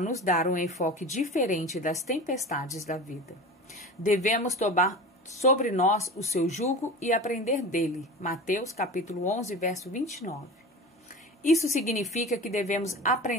dar um enfoque diferente das tempestades da vida. Devemos tomar sobre nós o seu jugo e aprender dele. Mateus capítulo 11, verso 29. Isso significa que devemos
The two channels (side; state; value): both; normal; correlation 0.33